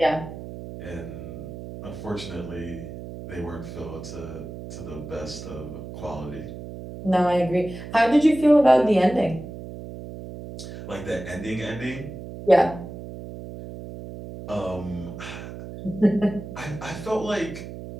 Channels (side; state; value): right; noise; hum, 11 dB below the sound